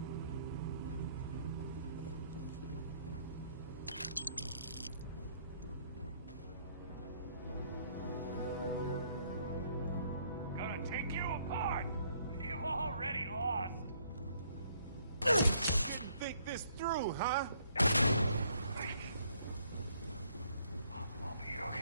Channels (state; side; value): inverted; both; correlation -0.66